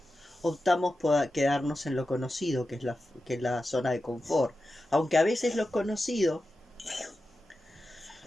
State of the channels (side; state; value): both; normal; correlation 0.92